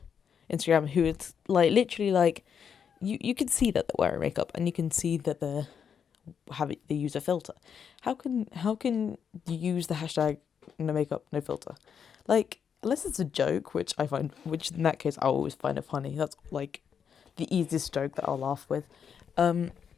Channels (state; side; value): quieter; right; 7.4 dB